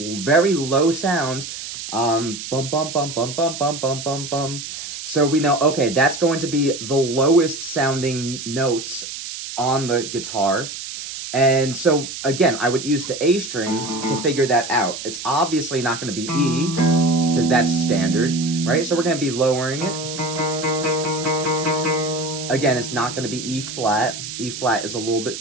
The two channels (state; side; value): noise; right; hiss, 9 dB below the sound